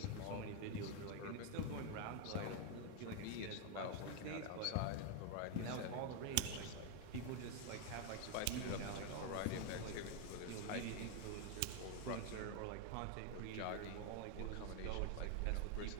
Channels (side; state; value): both; different; correlation 0.01